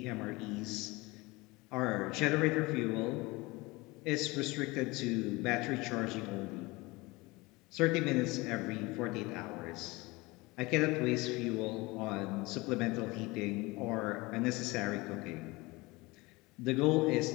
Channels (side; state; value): right; quieter; 23.0 dB